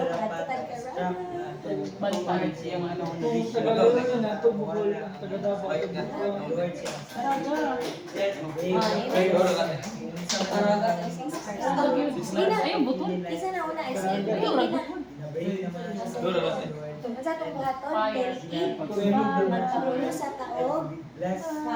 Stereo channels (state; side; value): identical; both; correlation 1.00